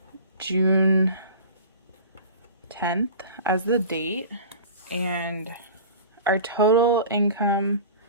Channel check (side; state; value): both; inverted; correlation -0.38